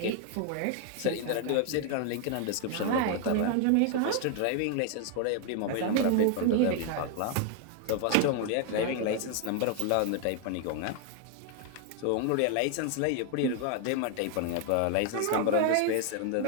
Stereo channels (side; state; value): both; different; correlation 0.00